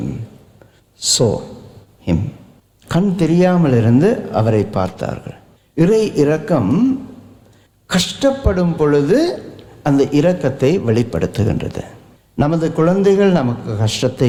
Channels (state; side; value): identical; both; correlation 1.00